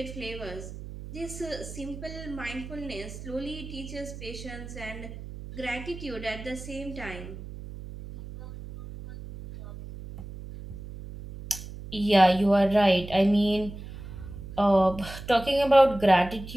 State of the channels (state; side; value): noise; right; hum, 12 dB below the sound